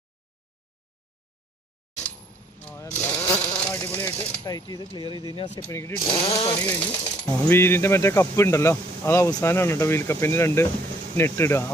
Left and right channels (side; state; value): both; normal; correlation 0.64